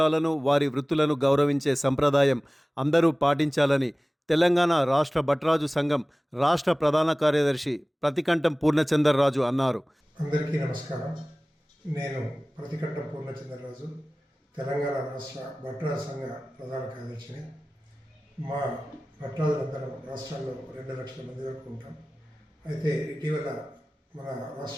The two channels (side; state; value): both; normal; correlation 0.98